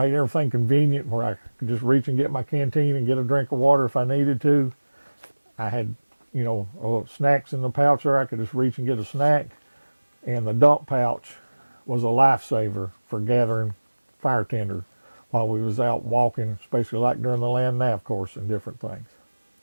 everything convenient where I could just reach and get my canteen and get a drink of water if I needed to. I had, snacks in the pouch there. I could just reach and get a snack. And the dump pouch was a lifesaver for gathering fire tinder while we was out walking, especially like during the land nav course and different things.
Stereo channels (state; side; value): inverted; both; correlation -1.00